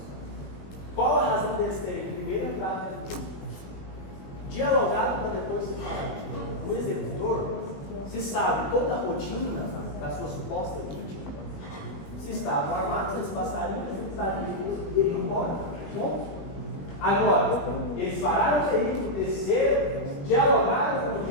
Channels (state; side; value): late; right; 20 ms